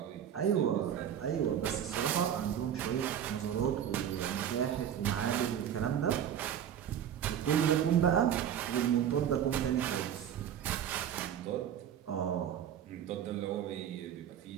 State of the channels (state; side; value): quieter; left; 9.5 dB